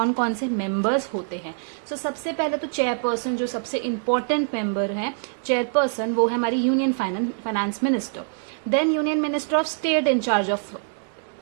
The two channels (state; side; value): silent; left; digital silence